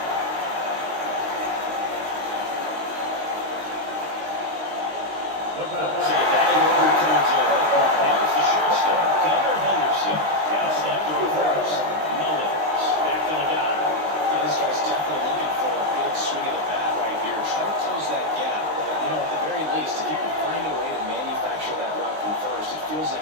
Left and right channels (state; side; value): late; left; 19 ms